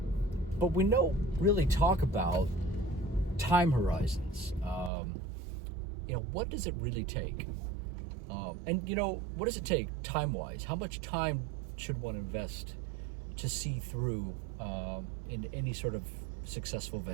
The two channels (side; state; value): left; drops out; at 4.9 s